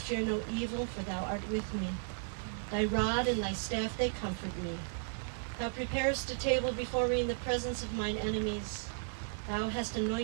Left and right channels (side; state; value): left; silent; digital silence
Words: no evil, for thou art with me. Thy rod and thy staff, they comfort me. Thou preparest a table before me in the presence of mine enemies. Thou hast